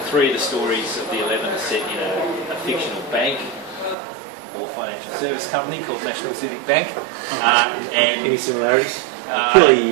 3 of the stories of the 11 are set in a fictional bank or financial service company called National Civic Bank. And any similarities?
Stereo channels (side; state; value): left; drops out; at 4.0 s